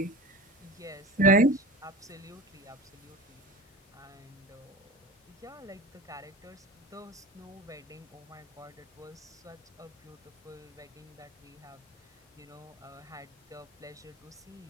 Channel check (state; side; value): normal; both; correlation 0.33